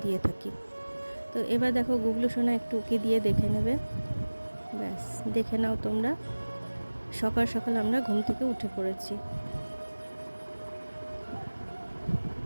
দিয়ে থাকি। তো এবার দেখো গুবলু সোনা একটু উকি দিয়ে দেখে নেবে। ব্যাস, দেখে নাও তোমরা। সকাল সকাল আমরা ঘুম থেকে উঠে পড়েছি।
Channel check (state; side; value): inverted; both; correlation -1.00